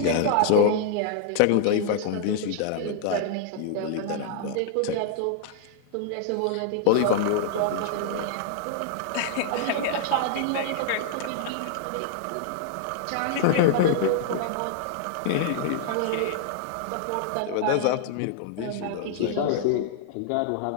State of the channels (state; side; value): different; both; correlation -0.01